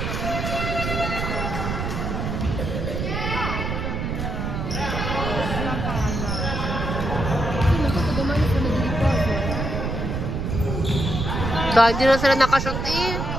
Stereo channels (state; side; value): noise; right; rumble, 2 dB below the sound